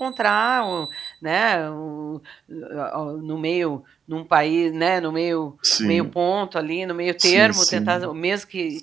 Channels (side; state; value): left; quieter; 6.9 dB